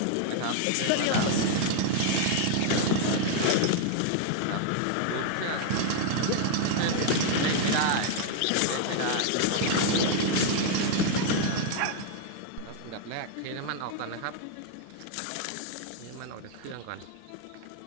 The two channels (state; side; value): different; both; correlation 0.00